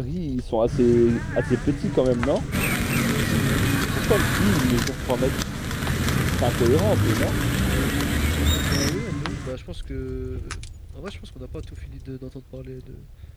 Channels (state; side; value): identical; both; correlation 1.00